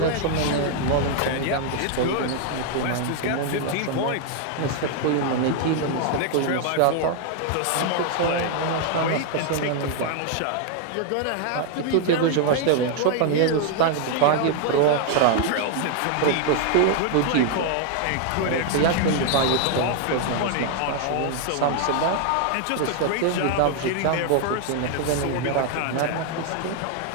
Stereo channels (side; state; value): both; different; correlation 0.00